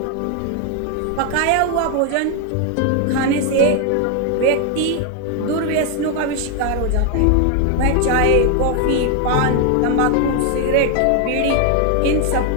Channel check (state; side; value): different; both; correlation 0.01